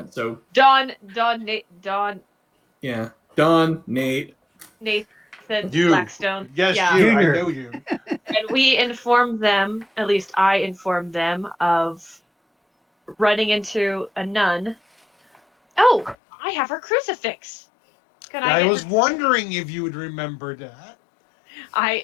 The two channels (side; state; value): right; drops out; at 16.2 s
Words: so Don, yeah. Don, Nate. Nathan You. Blackstone. Yes, Yeah. you. Junior. I know you. And we informed them, at least I informed them, of running into a nun. Oh, I have her crucifix. Can I I get was her? wondering if you would remember that. Wait,